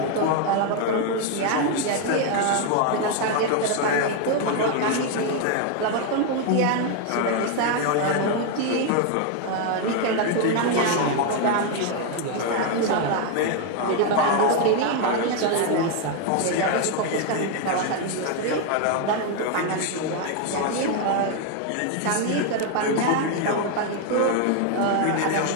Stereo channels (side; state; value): both; different; correlation 0.01